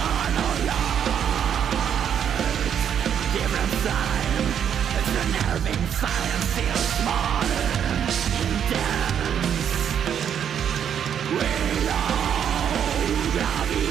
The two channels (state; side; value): quieter; left; 8.7 dB